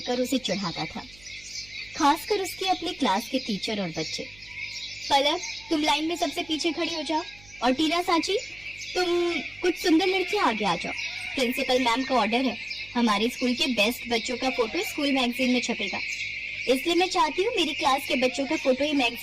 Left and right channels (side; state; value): right; noise; hum, 24 dB below the sound